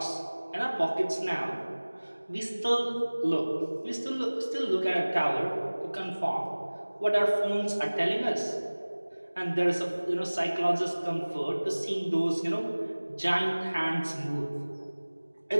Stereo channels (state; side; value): inverted; both; correlation -1.00